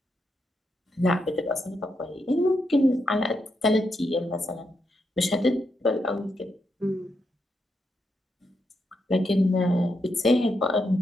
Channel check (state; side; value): normal; both; correlation 0.82